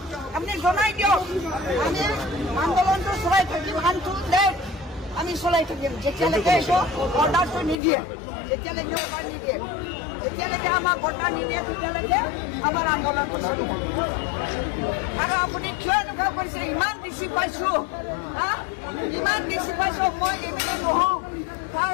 আপুনি জনাই দিয়ক আমি আন্দোলনটো চলাই থাকিম আমি চলাই থাকিম যেতিয়ালৈকে এইটো অৰ্ডাৰটো নিদিয়ে যেতিয়ালৈকে আমাক অৰ্ডাৰ নিদিয়ে তেতিয়ালৈকে আমাৰ আন্দোলনটো চলি থাকিব। আৰু আপুনি কিয় এনেকুৱা কৰিছে ইমান বেছি পাইছোঁ ইমান বেছি পাইছোঁ মই এমিনে নহওঁ তাৰ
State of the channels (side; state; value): right; drops out; at 7.8 s